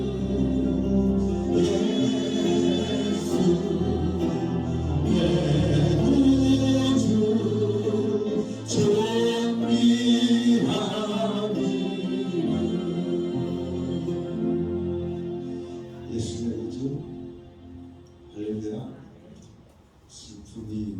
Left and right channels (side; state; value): both; identical; correlation 1.00